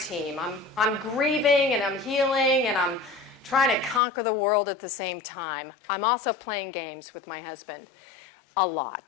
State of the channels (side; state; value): right; drops out; at 4.0 s